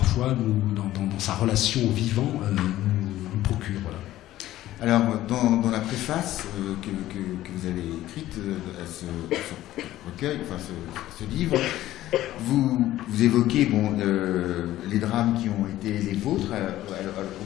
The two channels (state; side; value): quieter; right; 14.6 dB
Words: dans sa relation au vivant, nous procure. Voilà. Alors, dans la préface que vous avez écrite à ce recueil, enfin ce livre, vous évoquez les drames qui ont été les vôtres